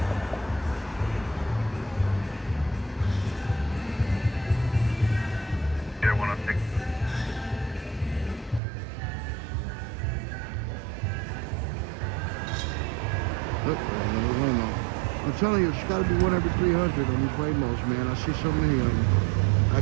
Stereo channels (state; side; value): drops out; left; at 8.6 s